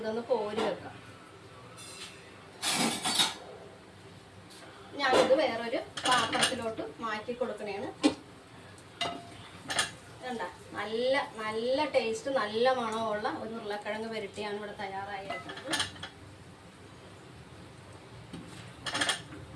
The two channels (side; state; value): both; identical; correlation 1.00